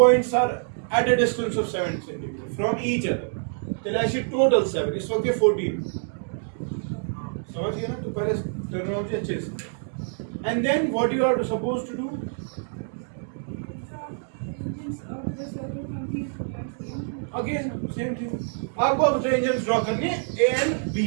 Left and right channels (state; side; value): silent; left; digital silence